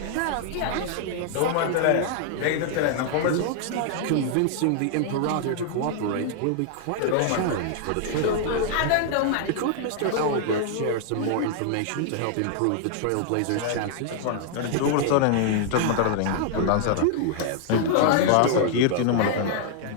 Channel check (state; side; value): different; both; correlation 0.00